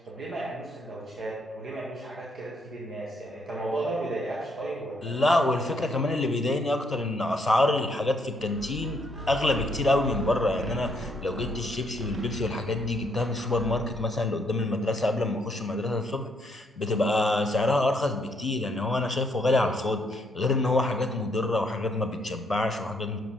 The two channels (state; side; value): normal; both; correlation 0.72